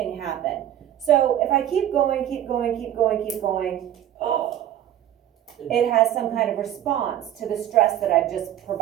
happen. So if I keep going, it has some kind of response to the stress that I've just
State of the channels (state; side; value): quieter; left; 11.6 dB